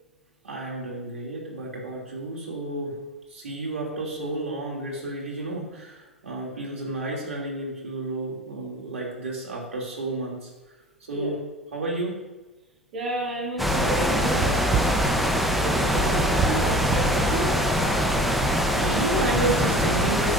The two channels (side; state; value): both; normal; correlation 0.40